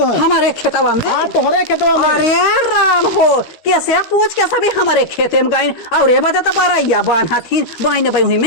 हमारे खेतवा में। हाँ तोहरे खेतवा में। अरे राम हो कैसे पूछ के सभी हमारे खेते में गई और ये बता तो बारैया बांधा थी बाई हुई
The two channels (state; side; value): late; right; 12 ms